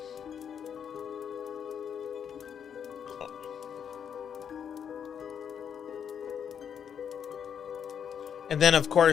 And then, of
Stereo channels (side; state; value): right; quieter; 8.0 dB